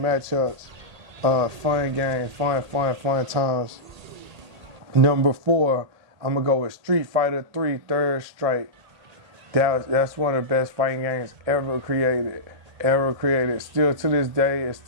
Fun game, fun times. Number 4, I'm gonna go with Street Fighter 3 Third Strike. That's one of the best fighting games ever created. Still to this day, it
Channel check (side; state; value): left; late; 1.8 ms